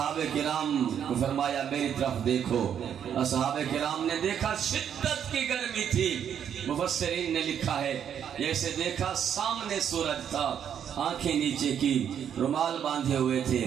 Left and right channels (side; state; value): left; quieter; 8.8 dB